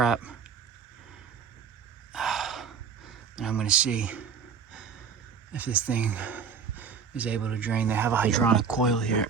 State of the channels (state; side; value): quieter; left; 6.5 dB